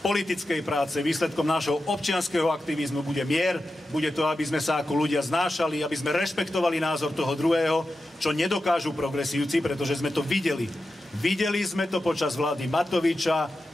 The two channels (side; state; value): both; normal; correlation 0.91